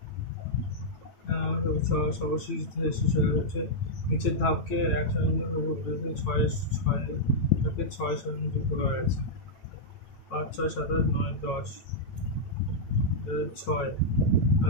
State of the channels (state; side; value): late; right; 9.1 ms